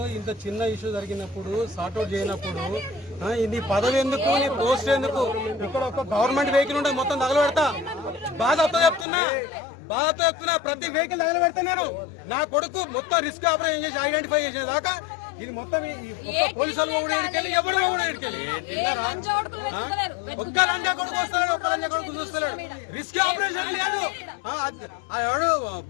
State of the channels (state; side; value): drops out; right; at 9.1 s